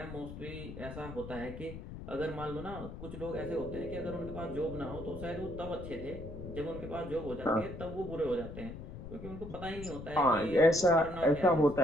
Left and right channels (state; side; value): noise; left; rumble, 11 dB below the sound